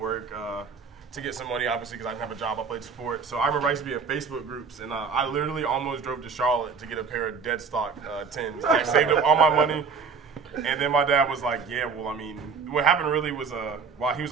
to get some money, obviously, because I didn't have a job. I played sport. So I remember I used to be in Facebook groups, and I literally almost drove to Charlotte to get a pair of dead stock 10s. I saved up all my money. And then my dad was like, yeah, well, I mean, what happened really was, he was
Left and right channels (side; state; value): left; quieter; 5.5 dB